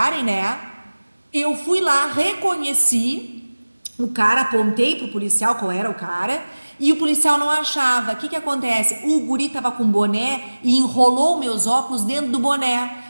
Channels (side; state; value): both; inverted; correlation -1.00